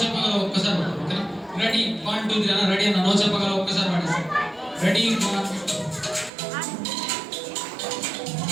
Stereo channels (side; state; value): left; drops out; at 6.3 s